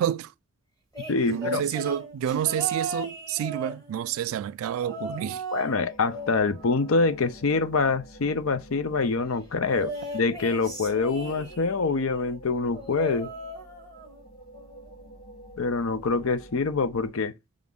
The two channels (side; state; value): both; normal; correlation -0.12